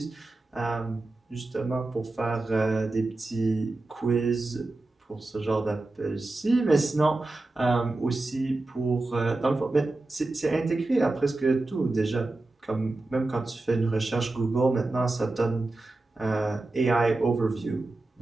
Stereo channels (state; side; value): quieter; left; 3.0 dB